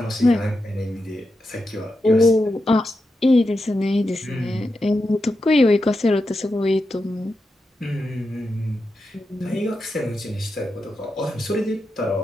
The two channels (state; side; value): normal; both; correlation 0.88